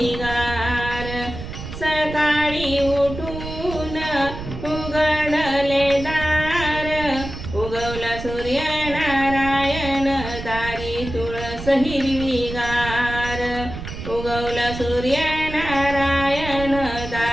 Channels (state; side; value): noise; right; rumble, 9 dB below the sound